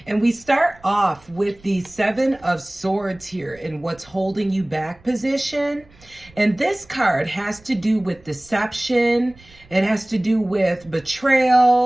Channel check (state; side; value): noise; right; rumble, 27 dB below the sound